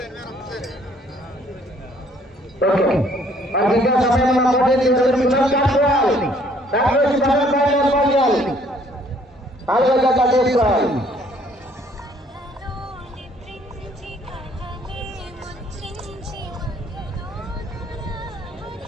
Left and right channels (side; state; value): both; normal; correlation 0.62